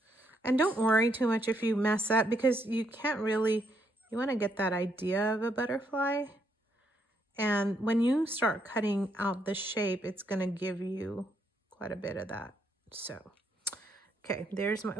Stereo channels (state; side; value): normal; both; correlation 0.75